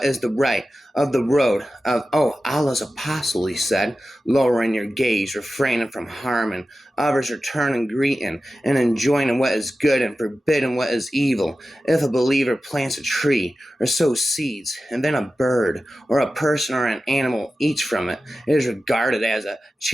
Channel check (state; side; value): normal; both; correlation 0.94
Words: is the right of the road of Allah's apostle?" He said, "Lowering your gaze, refraining from harming others, returning greeting, and enjoining what is good and forbidding what is evil. If a believer plants a tree or sows seeds, and then a bird or a person or an animal eats from it, it is regarded as a